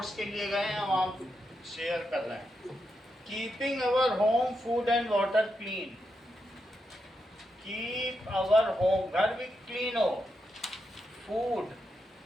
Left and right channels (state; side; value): normal; both; correlation 0.84